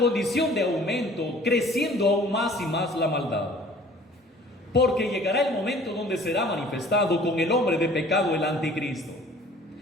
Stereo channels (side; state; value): both; normal; correlation 0.51